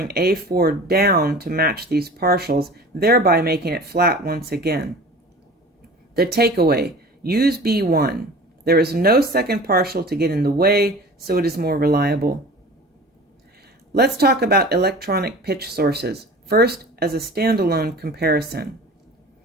A4 down to match these partials, thereby making it flat once again. The takeaway: use B1. There is no second partial to get in the way, so it is more reliable. Let's talk about electronic pitch sources, first as a standalone comparison.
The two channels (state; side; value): normal; both; correlation 0.40